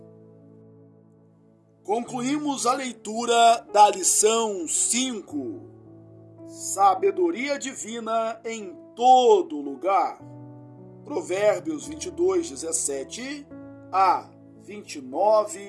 Concluímos a leitura da lição 5, Sabedoria Divina em todo lugar. Provérbios 22, 17 a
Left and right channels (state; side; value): identical; both; correlation 1.00